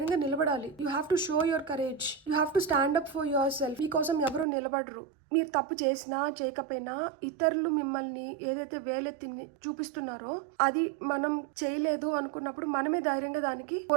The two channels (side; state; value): left; drops out; at 4.5 s